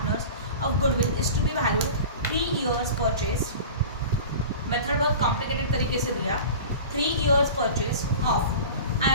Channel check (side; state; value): both; inverted; correlation -0.36